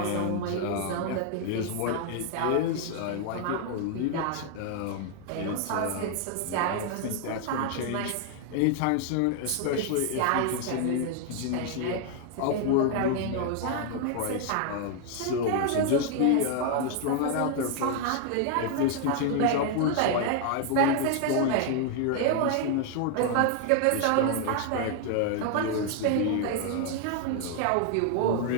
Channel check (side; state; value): both; different; correlation 0.00